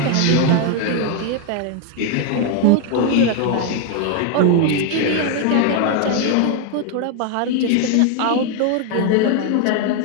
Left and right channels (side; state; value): both; different; correlation 0.01